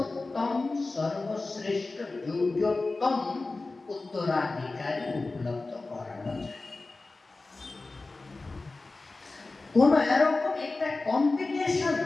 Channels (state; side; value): quieter; right; 3.4 dB